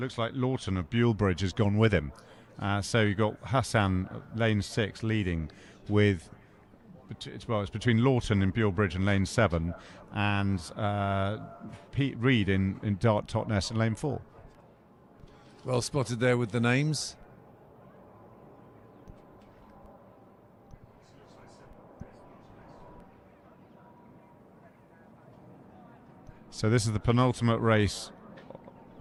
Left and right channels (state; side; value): identical; both; correlation 1.00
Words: like Lawton of Bulebridge has gone with him. So you've got Hassan, lane 6, leading with... it's between Lawton in Bulebridge and lane 7, and Pete Reed in Dart Totnes in lane 4. Well spotted there with the names. So this is the penultimate race.